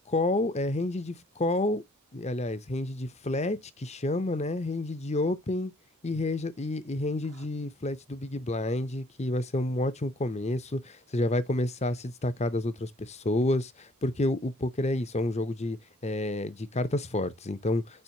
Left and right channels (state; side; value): normal; both; correlation 0.61